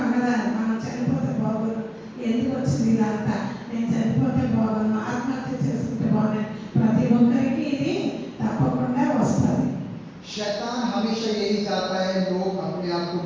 కదా మనం చనిపోతే బాగుండు ఎందుకు వచ్చింది ఇదంతా నేను చనిపోతే బాగుండు ఆత్మహత్య చేసుకుంటే బాగుండు ప్రతి ఒక్కరికి ఇది తప్పకుండా వస్తుంది. शैतान हमेशा यही चाहता है लोग अपने आप को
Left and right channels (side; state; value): both; identical; correlation 1.00